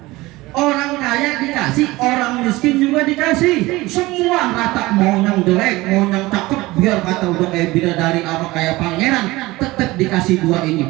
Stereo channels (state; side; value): quieter; left; 20.0 dB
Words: Orang kaya dikasih, orang miskin juga dikasih. Semua rata, mau yang jelek, mau yang cakep, biar kata udah kayak bidadari apa kayak pangeran, tetap dikasih dua ini.